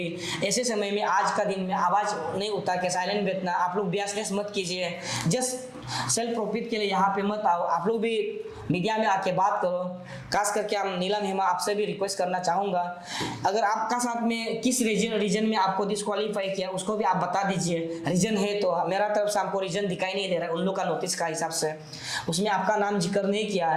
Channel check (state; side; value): identical; both; correlation 1.00